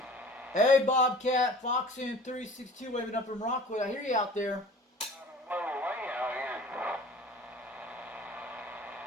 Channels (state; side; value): normal; both; correlation 0.45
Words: Hey, Bobcat, Foxin 362 waving up from Rockwood. I hear you out there.